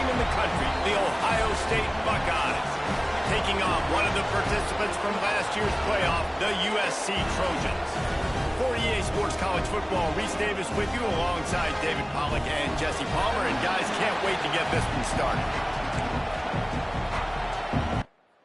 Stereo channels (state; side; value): identical; both; correlation 1.00